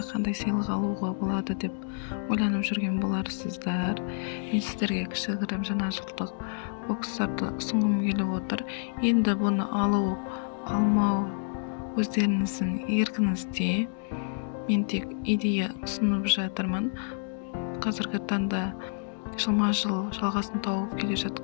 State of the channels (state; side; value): silent; right; digital silence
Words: қандай сыйлық алуға болады деп ойланып жүрген боларсыздар. Мен сіздерге кішігірім жаңа жылдық бокстарды ұсынғым келіп отыр. Енді бұны алу, алмау өздеріңіздің еркіңізде. Мен тек идея ұсынып жатырмын. Қазіргі таңда жылма-жыл жалғасын тауып келе